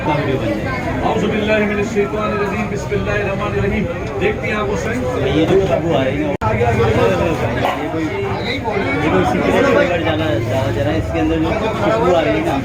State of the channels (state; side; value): identical; both; correlation 1.00